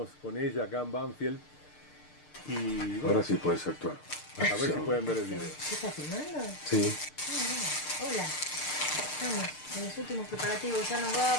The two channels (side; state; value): right; late; 6.6 ms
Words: con ella acá en Banfield. Y bueno, ahora sí puedes actuar. A ver si pueden ver el video. ¿Qué estás filmando? Sí. Hola. Estamos en los últimos preparativos, ya nos